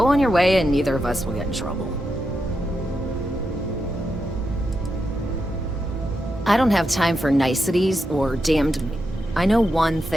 on your way and neither of us will get in trouble. I don't have time for niceties or damned... I know one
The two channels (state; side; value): normal; both; correlation 0.86